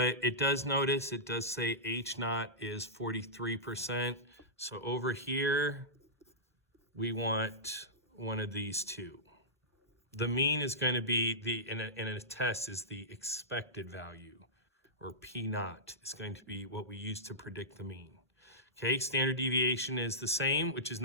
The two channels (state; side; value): normal; both; correlation -0.16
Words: it does say H naught is 43%. So over here, we want one of these two. The mean is going to be, in a test, is the expected value, or P naught is going to be what we use to predict the mean. Okay, standard deviation is the same, which is